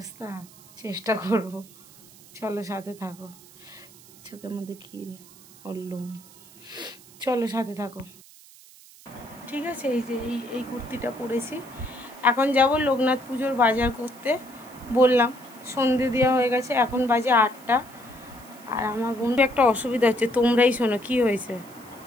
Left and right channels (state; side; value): noise; right; hiss, 23 dB below the sound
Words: চেষ্টা করব। চলো সাথে থাকো। চোখের মধ্যে কী বললুম, চলো সাথে থাকো। ঠিক আছে, এই যে এই কুর্তিটা পরেছি। এখন যাব লোকনাথ পুজোর বাজার করতে। বললাম সন্ধে দেওয়া হয়ে গেছে, এখন বাজে 8টা। আর আমার বন্ধু একটা অসুবিধা হচ্ছে, তোমরাই শোনো। কি হয়েছে,